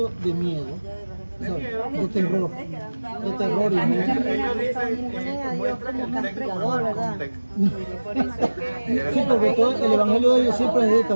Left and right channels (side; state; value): both; inverted; correlation -1.00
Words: de miedo, o sea, de terror y miedo. Ellos dicen, muestran el texto como el contexto. Por eso es que Sí, porque todo el evangelio de ellos siempre es de